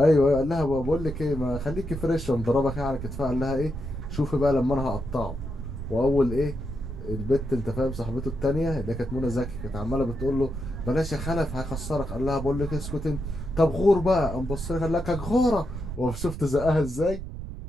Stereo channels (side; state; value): right; noise; rumble, 8 dB below the sound